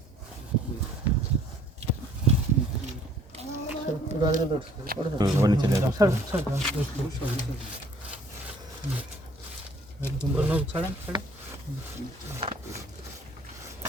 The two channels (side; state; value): both; normal; correlation 0.58